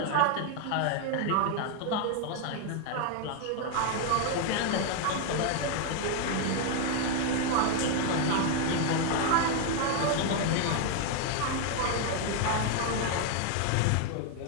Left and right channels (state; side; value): different; both; correlation 0.01